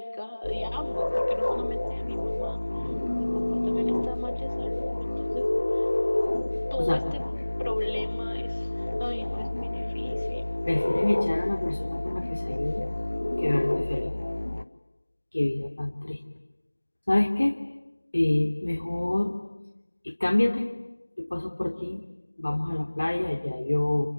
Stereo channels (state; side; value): inverted; both; correlation -1.00